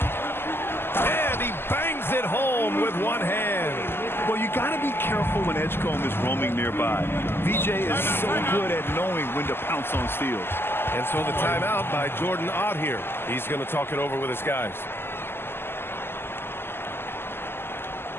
And he bangs it home with one hand. Well, you got to be careful when Edgecombe is roaming nearby. VJ is so good at knowing when to pounce on steals. And so the timeout by Jordan Ott here. He's going to talk it over with his guys.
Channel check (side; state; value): right; late; 0.11 ms